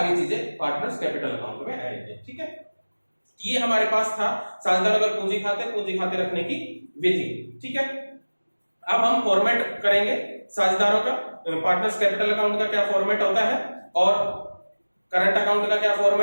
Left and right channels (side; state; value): both; inverted; correlation -1.00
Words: चीजें पार्टनर्स कैपिटल अकाउंट में आएंगी, ठीक है। ये हमारे पास था साझेदार अगर पूंजी खाते रखने की विधि, ठीक है। अब हम फॉर्मेट करेंगे साझेदारों का, पार्टनर्स कैपिटल अकाउंट का क्या फॉर्मेट होता है और करंट अकाउंट का क्या